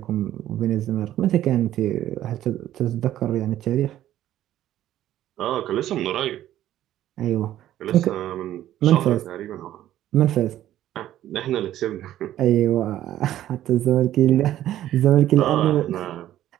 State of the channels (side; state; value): left; quieter; 12.8 dB